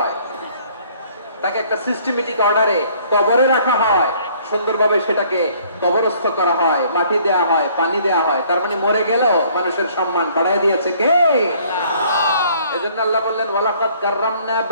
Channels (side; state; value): both; inverted; correlation -0.59